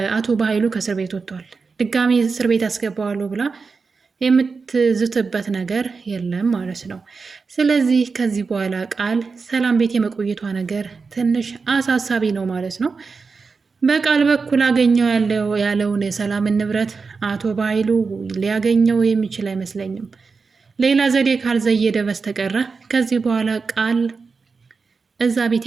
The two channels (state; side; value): quieter; left; 4.7 dB